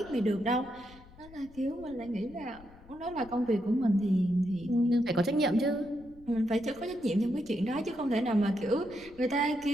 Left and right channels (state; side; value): noise; left; rumble, 23 dB below the sound